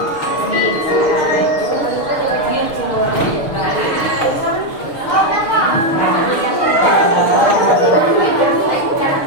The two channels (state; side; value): late; right; 6.7 ms